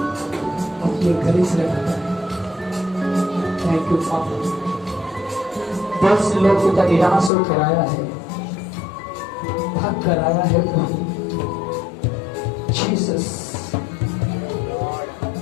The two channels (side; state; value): right; drops out; at 7.3 s